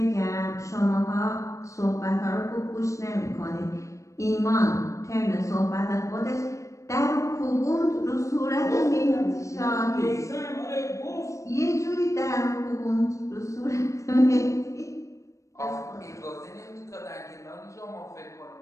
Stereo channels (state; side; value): late; right; 0.15 ms